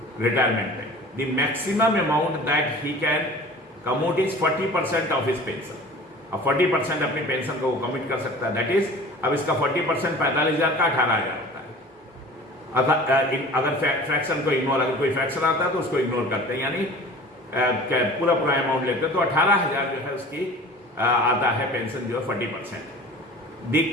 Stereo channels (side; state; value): both; normal; correlation 0.41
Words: रिटायरमेंट में। The maximum amount that he can commute is 40% of his pension. अब 40% अपनी पेंशन को वो कम्यूट कर सकता है, दैट इज अब इसका 40% 45,000 का 18,000 होता है। अगर फ्रैक्शन को इग्नोर, अगर कोई फ्रैक्शन आता है तो उसको इग्नोर करते हैं, यानी पूरा अमाउंट लेते हैं, तो 18,000 जो है उसकी आता है पेंशन जो है 40%। The